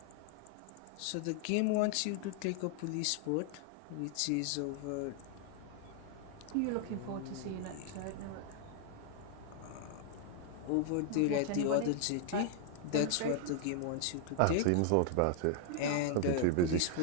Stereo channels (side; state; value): both; different; correlation 0.00